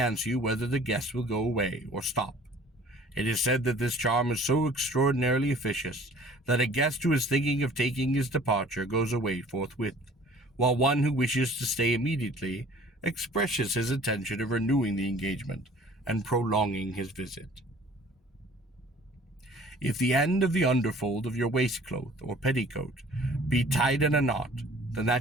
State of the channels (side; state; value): both; normal; correlation 0.50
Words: you whether the guest will go away or stop. It is said that this charm is so extraordinarily efficacious that a guest who is thinking of taking his departure goes away forthwith, while one who wishes to stay immediately expresses his intention of renewing the engagement and prolonging his visit. If the end of the underfold of your waistcloth or petticoat be tied in a knot, then